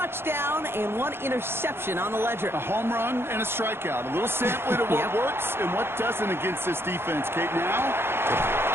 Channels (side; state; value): left; late; 0.11 ms